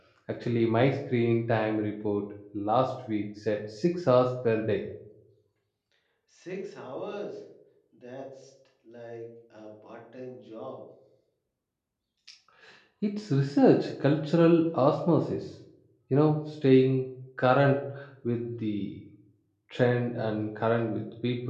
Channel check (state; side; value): identical; both; correlation 1.00